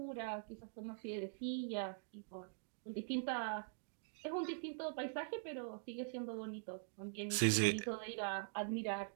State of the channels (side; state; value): left; silent; digital silence